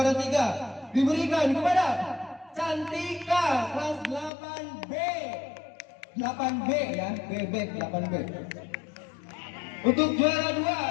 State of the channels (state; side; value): drops out; right; at 4.3 s